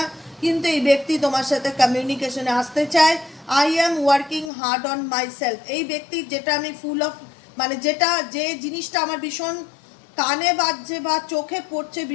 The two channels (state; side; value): drops out; right; at 4.5 s